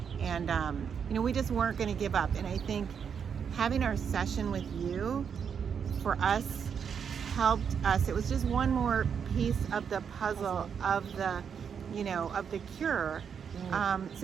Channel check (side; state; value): left; quieter; 7.2 dB